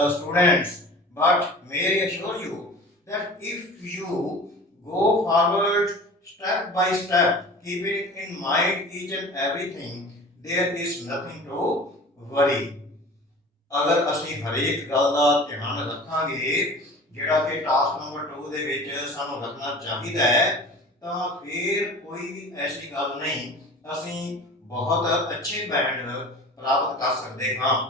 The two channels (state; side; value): normal; both; correlation 0.40